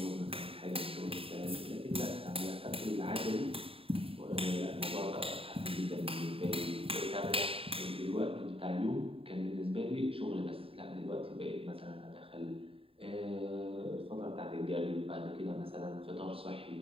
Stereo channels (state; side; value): late; left; 0.27 ms